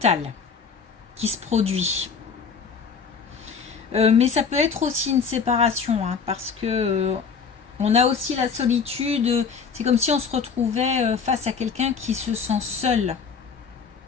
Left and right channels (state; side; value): quieter; right; 5.8 dB